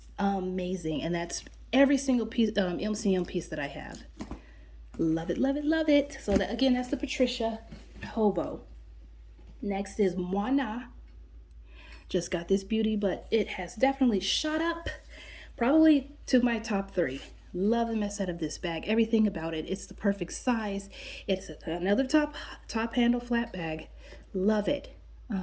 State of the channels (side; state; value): both; identical; correlation 1.00